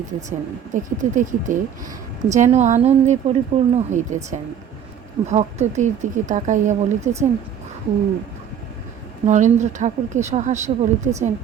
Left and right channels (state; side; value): quieter; left; 8.7 dB